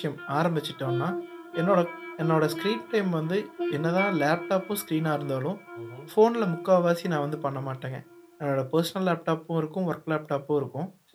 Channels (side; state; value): both; identical; correlation 1.00